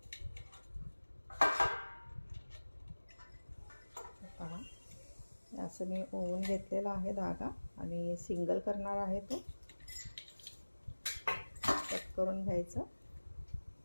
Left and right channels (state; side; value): inverted; both; correlation -1.00